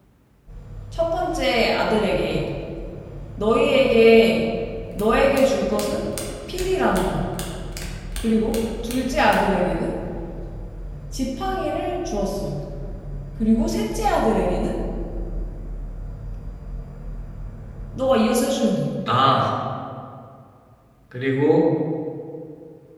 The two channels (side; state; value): both; identical; correlation 1.00